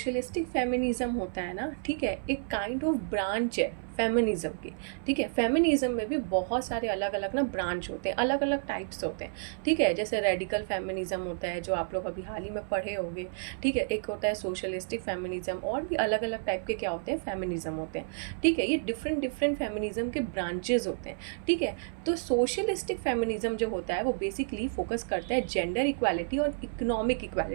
फेमिनिज्म होता है ना, ठीक है, एक काइंड ऑफ ब्रांच है फेमिनिज्म की। ठीक है, फेमिनिज्म में भी बहुत सारे अलग अलग ना ब्रांच होते हैं, अलग अलग टाइप्स होते हैं। ठीक है, जैसे रेडिकल फेमिनिज्म होता है जो आप लोग अभी हाल ही में पढ़े होंगे। ठीक है, एक होता है सोशलिस्टिक फेमिनिज्म, और भी अलग अलग टाइप के क्या होते हैं, फेमिनिज्म होते हैं। ठीक है, ये डिफरेंट डिफरेंट फेमिनिज्म के ब्रांचेज होते हैं। ठीक है, तो सोशलिस्टिक फेमिनिज्म जो होता है वो बेसिकली फोकस करता है जेंडर इक्वालिटी और इकोनॉमिक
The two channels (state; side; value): silent; left; 56 dB below the other